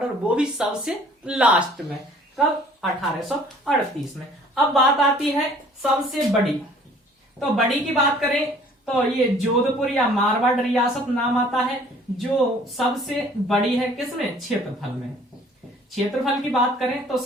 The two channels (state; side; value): normal; both; correlation 0.54